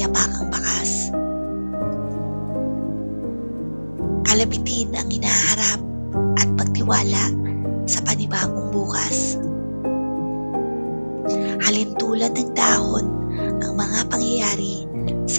bakas. Kalamitin ang hinaharap at pagtiwala sa panibagong bukas. Halintulad ng dahon ang mga pangyayari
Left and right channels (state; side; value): inverted; both; correlation -1.00